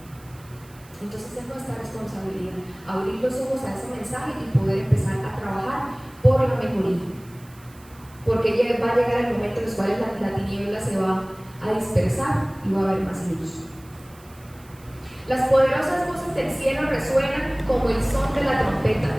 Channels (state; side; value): noise; right; hiss, 25 dB below the sound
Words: Entonces es nuestra responsabilidad abrir los ojos a ese mensaje y poder empezar a trabajar por la mejoría, porque va a llegar el momento en el cual la tiniebla se va a dispersar y va a haber más luz. Las poderosas voces del cielo resuenan como el son de la trompeta,